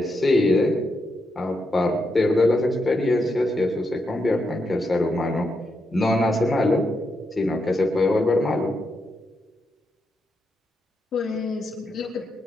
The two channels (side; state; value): both; normal; correlation 0.83